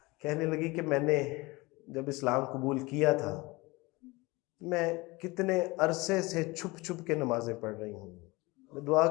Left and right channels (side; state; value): right; quieter; 23.2 dB